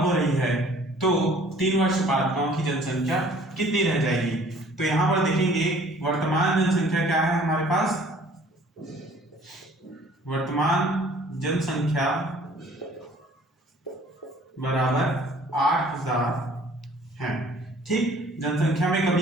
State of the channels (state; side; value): normal; both; correlation 0.54